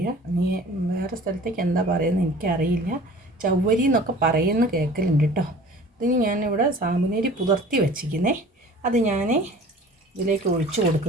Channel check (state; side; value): normal; both; correlation 0.46